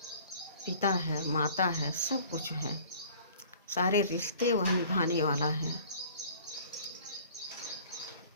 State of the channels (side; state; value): both; inverted; correlation -0.49